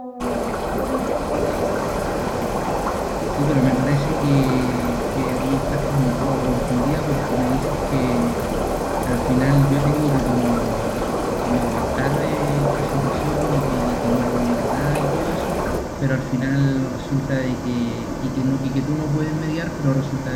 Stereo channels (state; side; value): identical; both; correlation 1.00